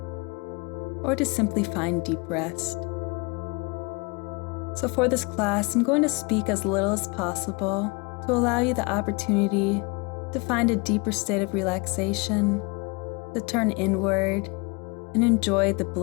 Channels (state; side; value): quieter; right; 29.3 dB